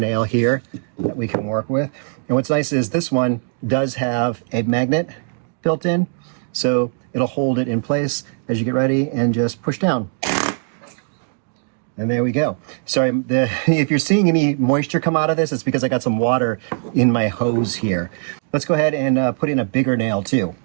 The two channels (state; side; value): silent; left; digital silence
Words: here that we can work with. And what's nice is this one does have a magnet built in, so it'll hold it in place as you get ready and just push down. And there we go. Sorry, if you're seeing any moisture come out of this, it's because I got some water in my hose here. Let's go ahead and put in a bigger nail too.